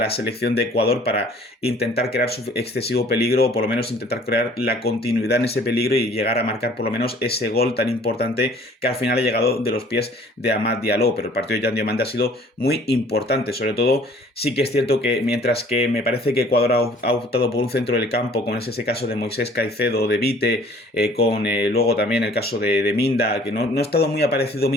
selección de Ecuador para intentar crear su excesivo peligro o por lo menos intentar crear la continuidad en ese peligro y llegar a marcar por lo menos ese gol tan importante que al final ha llegado de los pies de Amad Diallo, pero el partido de Yan Diomande ha sido muy importante, sobre todo sí que es cierto que mientras que me parece que Ecuador ha optado por un centro del campo, con ese caso de Moisés Caicedo, de Vite, luego también el caso de Minda, que no ha estado muy aparecido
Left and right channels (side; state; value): both; normal; correlation 0.54